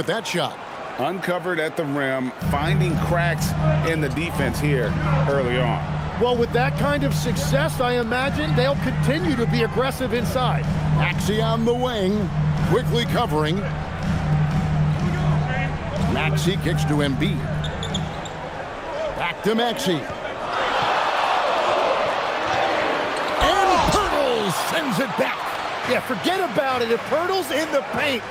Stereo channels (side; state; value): both; identical; correlation 1.00